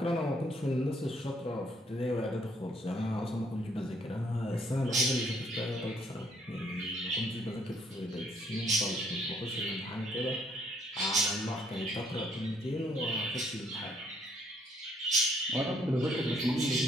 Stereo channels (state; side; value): normal; both; correlation 0.66